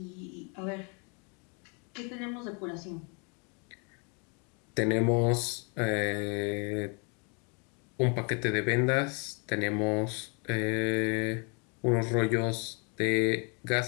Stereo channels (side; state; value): right; quieter; 35.2 dB